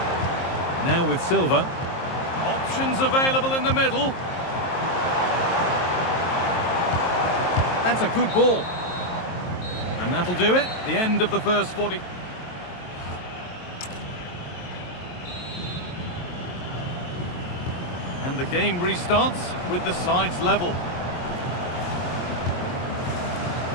Now with Silva. Options available in the middle. That's a good ball. And that'll do it. The end of the first 40. And the game restarts with the sides level.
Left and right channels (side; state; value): right; late; 23 ms